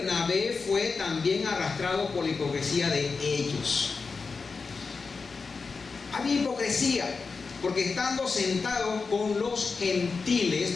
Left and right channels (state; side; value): quieter; right; 4.6 dB